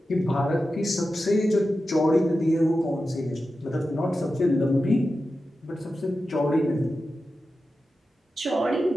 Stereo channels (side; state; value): both; normal; correlation 0.92